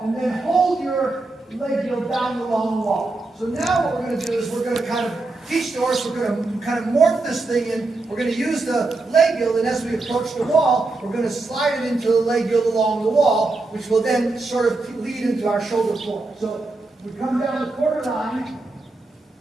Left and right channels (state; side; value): quieter; left; 3.3 dB